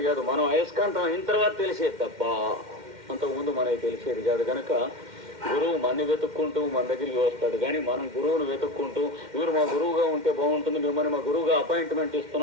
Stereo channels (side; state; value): left; late; 2.1 ms